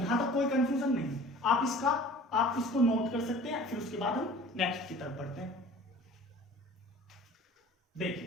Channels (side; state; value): both; normal; correlation 0.45